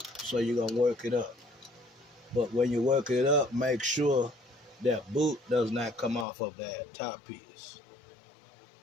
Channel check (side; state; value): right; drops out; at 6.2 s